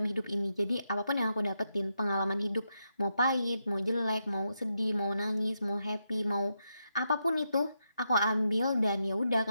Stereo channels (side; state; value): both; inverted; correlation -0.83